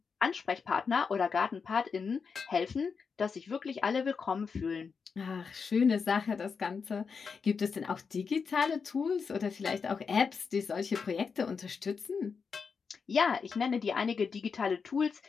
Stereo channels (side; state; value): right; quieter; 5.6 dB